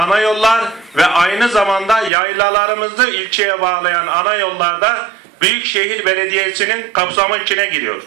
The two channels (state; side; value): drops out; left; at 2.1 s